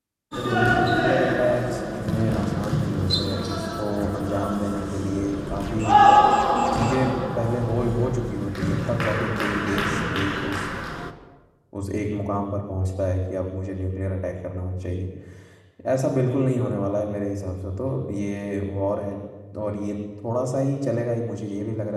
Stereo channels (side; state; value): both; identical; correlation 1.00